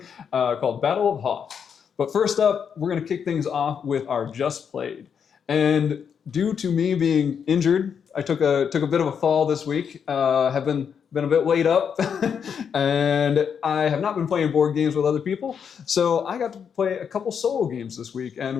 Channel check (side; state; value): right; quieter; 7.2 dB